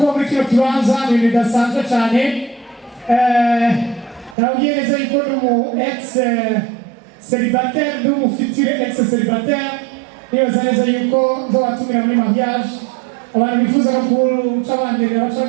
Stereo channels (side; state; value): left; drops out; at 4.4 s